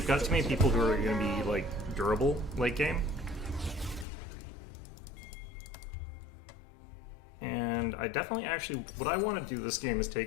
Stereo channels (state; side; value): drops out; right; at 4.0 s